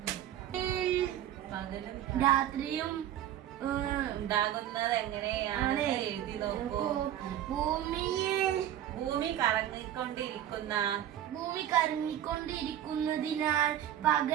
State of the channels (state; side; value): quieter; left; 11.6 dB